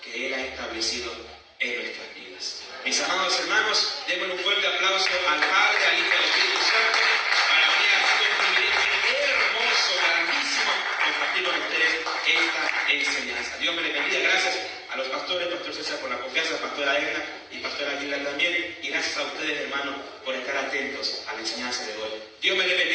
que Él ha establecido en nuestras vidas. Mis amados hermanos, démosle un fuerte aplauso al Padre, al Hijo y al Espíritu Santo. Para mí ha sido un privilegio hermoso, grandísimo, compartir con ustedes esta enseñanza. Dios me les bendiga. Gracias a los pastores, Pastor César por la confianza, Pastora Edna y Pastora Aguilar también. Y gracias a ustedes, hermanos, por estar atentos a la enseñanza de hoy. Dios me les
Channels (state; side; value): identical; both; correlation 1.00